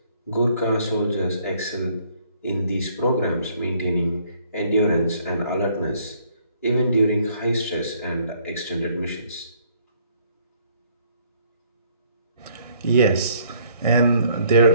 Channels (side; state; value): both; inverted; correlation -0.63